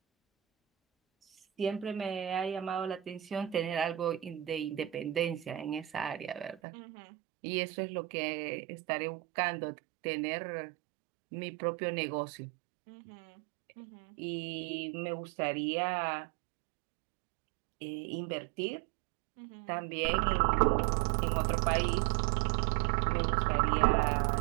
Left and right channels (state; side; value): drops out; left; at 6.6 s